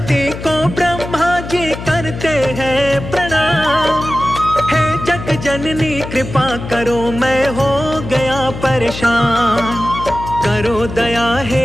को ब्रह्मा जी करते हैं प्रणाम। हे जग जननी कृपा करो, मैं हो गया परेशान। करो दया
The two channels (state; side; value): noise; left; hum, 10 dB below the sound